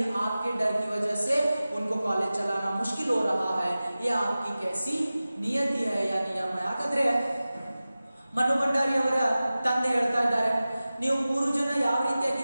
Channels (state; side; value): inverted; both; correlation -0.96